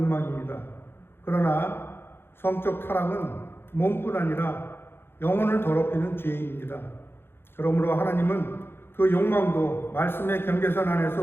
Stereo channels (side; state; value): right; late; 0.11 ms